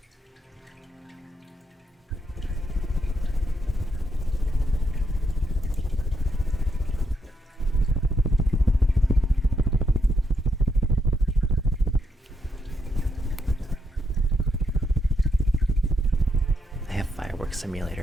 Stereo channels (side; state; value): both; normal; correlation 0.80